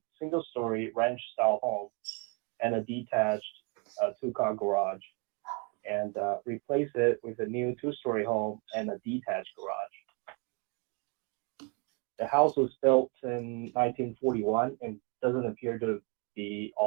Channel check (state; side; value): quieter; left; 31.3 dB